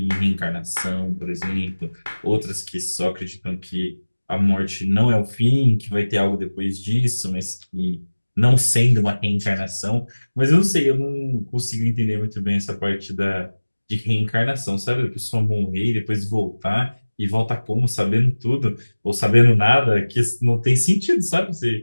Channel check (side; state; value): both; inverted; correlation -1.00